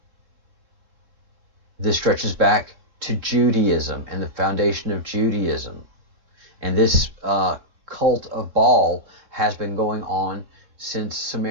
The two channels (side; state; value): left; late; 3.6 ms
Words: This stretches back to Judaism and the foundation of Judaism. And this cult of Baal has been going on since